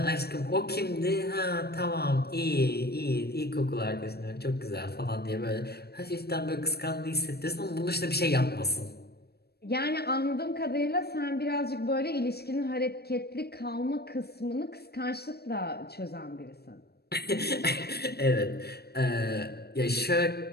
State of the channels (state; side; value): late; right; 0.47 ms